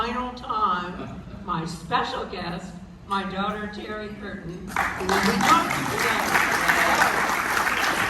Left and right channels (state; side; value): identical; both; correlation 1.00